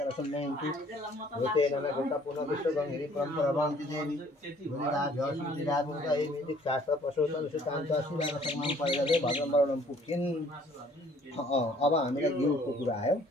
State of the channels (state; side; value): normal; both; correlation 0.58